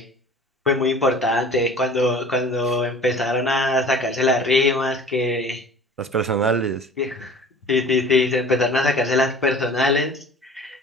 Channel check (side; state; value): both; normal; correlation 0.45